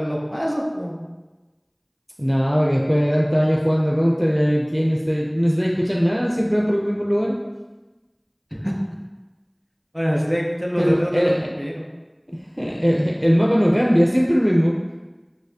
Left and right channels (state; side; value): identical; both; correlation 1.00